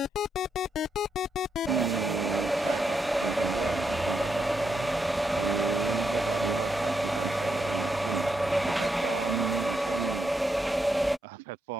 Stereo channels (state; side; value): normal; both; correlation 0.81